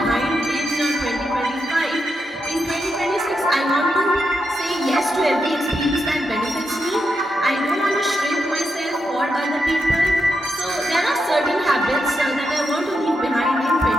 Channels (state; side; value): normal; both; correlation 0.85